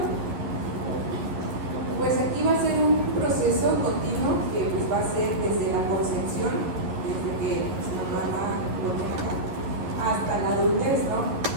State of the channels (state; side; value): late; left; 11 ms